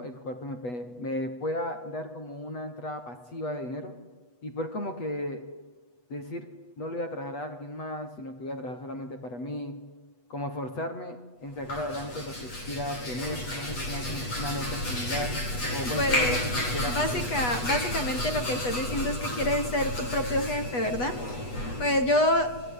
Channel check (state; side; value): late; right; 8.2 ms